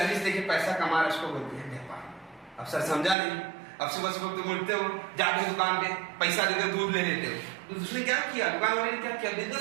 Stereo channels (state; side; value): drops out; left; at 3.2 s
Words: देके पैसा कमा रहा है, उसको बोलते हैं व्यापार। अब सर समझा नहीं। अब सुबह सुबह तुम उठते हो, जाके दुकान पे पैसा देकर दूध ले लेते हो, तो उसने क्या किया? दुकान वाले ने क्या किया?